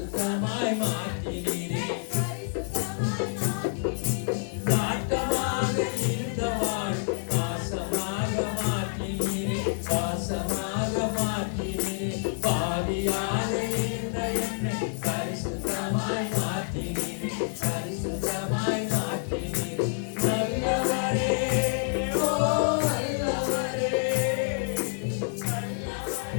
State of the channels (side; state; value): right; silent; 59 dB below the other